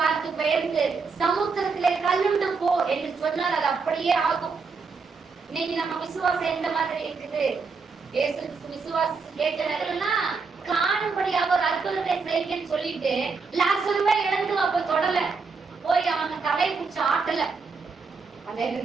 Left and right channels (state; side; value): quieter; left; 4.8 dB